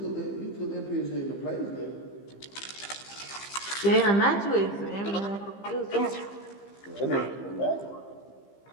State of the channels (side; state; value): right; late; 15 ms